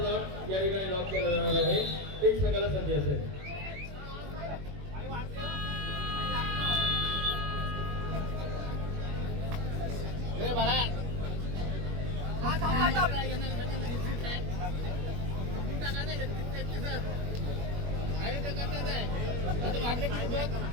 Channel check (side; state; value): left; late; 21 ms